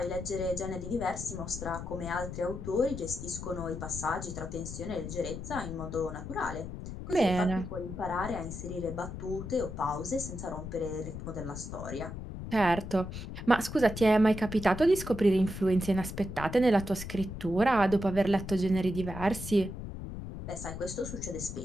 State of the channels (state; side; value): noise; left; rumble, 8 dB below the sound